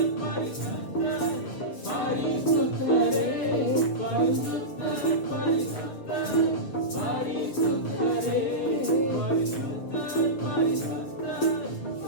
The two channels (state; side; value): late; right; 7.1 ms